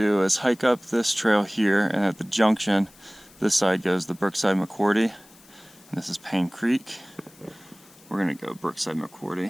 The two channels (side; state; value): left; noise; hiss, 26 dB below the sound